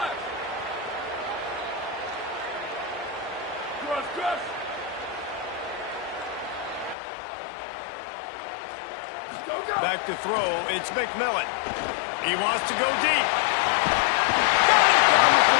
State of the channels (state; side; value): drops out; right; at 7.0 s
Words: Back to throw, it's McMillan. He wants to go deep. Got it down the